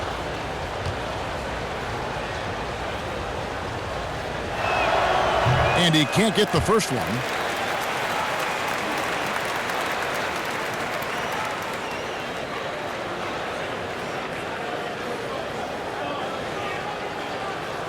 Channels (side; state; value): both; identical; correlation 1.00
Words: And he can't get the first one.